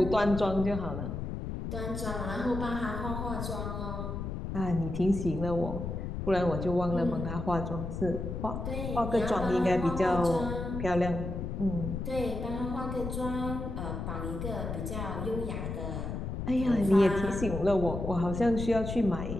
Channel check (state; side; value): noise; left; rumble, 5 dB below the sound